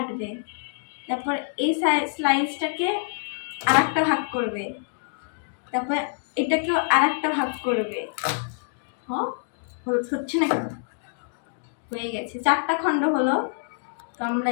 তারপর এই স্লাইসটাকে আর একটা ভাগ করবে, তারপর এটাকেও আর একটা ভাগ করবে। হ্যাঁ, হচ্ছে না? হয়ে গেছে, 4টা খণ্ড হলো। তো আমরা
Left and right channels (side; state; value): right; silent; digital silence